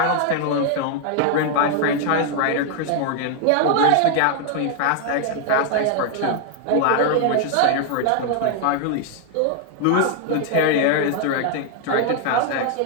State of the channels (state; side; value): different; both; correlation 0.00